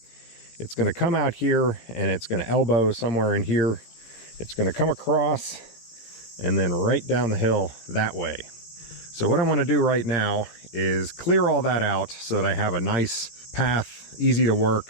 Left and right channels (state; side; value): late; right; 17 ms